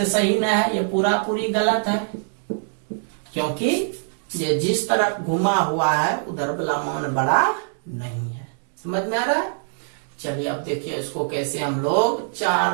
सही नहीं है, ये पूरा पूरी गलत है, क्योंकि ये जिस तरफ घुमा हुआ है उधर वाला मान बड़ा नहीं है। समझ में आ रहा है? चलिए अब देखिए इसको कैसे हम लोग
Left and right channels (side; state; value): left; silent; digital silence